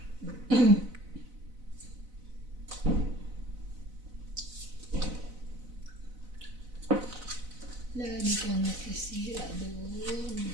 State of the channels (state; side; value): late; left; 4.0 ms